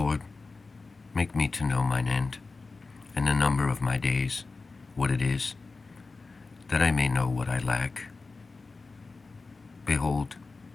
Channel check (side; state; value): right; quieter; 3.9 dB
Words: make me to know mine end, and the number of my days, what it is, that I may know what I lack. Behold,